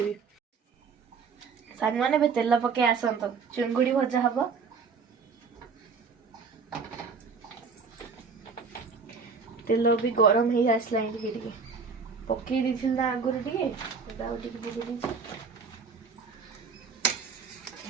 सांग माने बे तेल पके आसंत चुंगुड़ी भजा हबो तेल भी गरम हो आसला टिके पकई दी ना आगुरी टिके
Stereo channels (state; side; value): quieter; left; 5.2 dB